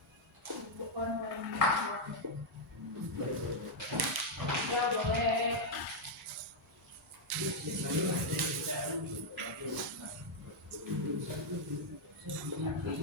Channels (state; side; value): normal; both; correlation -0.02